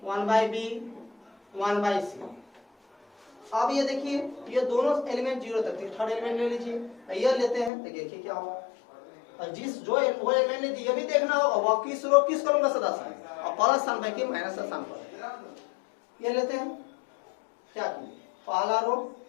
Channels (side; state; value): right; drops out; at 7.7 s